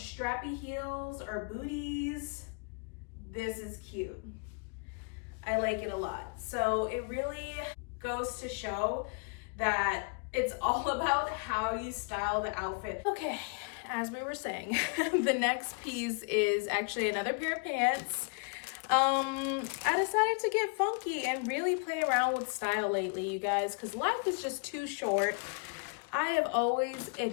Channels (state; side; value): quieter; right; 36.0 dB